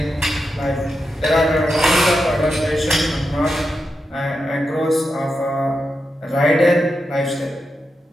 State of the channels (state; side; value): normal; both; correlation 0.88